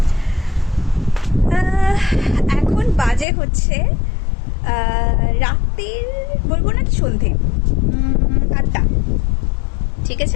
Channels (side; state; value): right; drops out; at 3.2 s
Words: এখন বাজে হচ্ছে রাত্রির, বলবো না সন্ধে 8টা, ঠিক